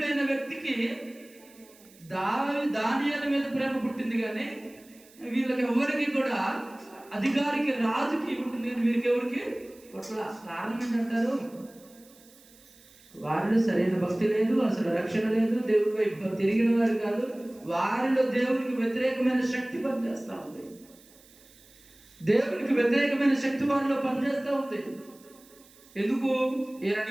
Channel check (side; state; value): right; noise; hiss, 26 dB below the sound